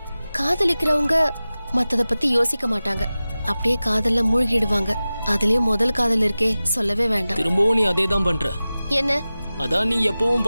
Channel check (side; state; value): both; inverted; correlation -0.96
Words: காதலிக்கிறவங்க மத்தத பத்தி யோசிக்க மாட்டாங்க, அப்படியே காதல்ல மூழ்கிடுவாங்க. அதுலயும் முதல் காதல் இருக்கே, சொல்லவே வேண்டாம். திரும்பவும் நீ அதே தான் பண்ற. என்ன? அதான் நீ எப்பவும்